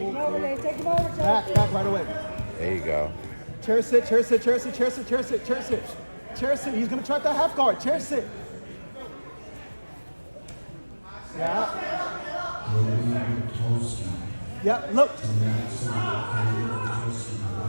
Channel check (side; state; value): both; inverted; correlation -1.00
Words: Take him over, Back right away. There you go. Chair sit, chair sit, chair sit, chair sit, chair sit, chair sit. Chair sit. He's gonna try that half guard. Chair sit. Yeah. Yeah, look.